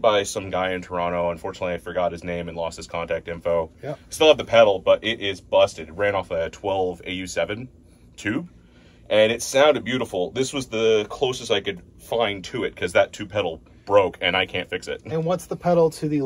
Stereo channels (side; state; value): both; identical; correlation 1.00